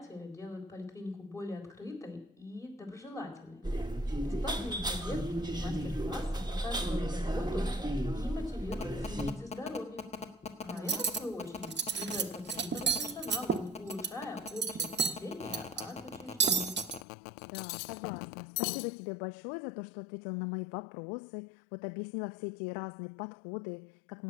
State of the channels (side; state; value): right; drops out; at 17.0 s